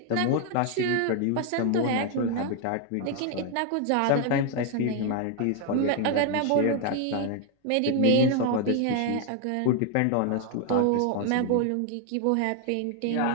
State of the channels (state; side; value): different; both; correlation 0.01